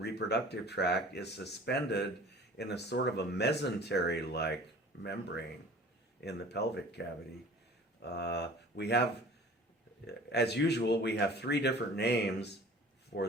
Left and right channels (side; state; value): both; normal; correlation 0.45